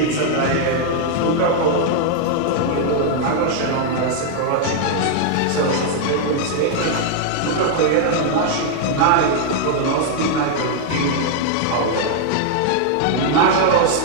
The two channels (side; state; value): both; different; correlation 0.00